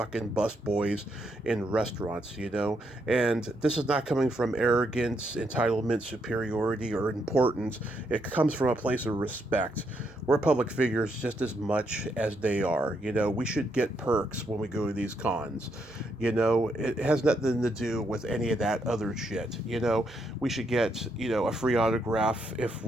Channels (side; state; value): right; noise; hum, 30 dB below the sound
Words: busboys in restaurants, and this is not coming from arrogance, entitlement, superiority, or importance. It comes from a place of respect. We're public figures just as much as they are. We should get perks when we go to these cons. It has nothing to do with any of that other shit. We should get, a free autograph if